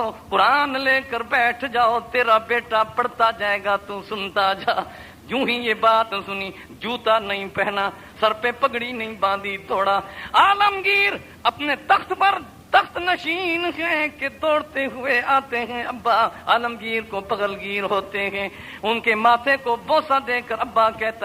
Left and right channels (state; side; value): identical; both; correlation 1.00